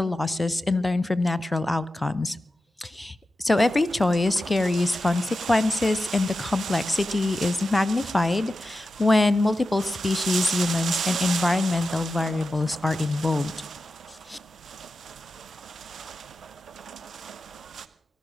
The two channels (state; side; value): normal; both; correlation 0.92